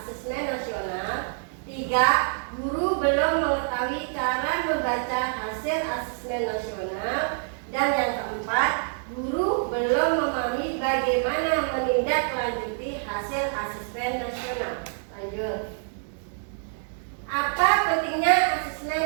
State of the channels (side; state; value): left; silent; 61 dB below the other